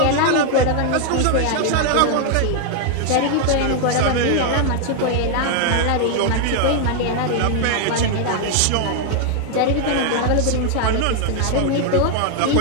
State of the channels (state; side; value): different; both; correlation 0.00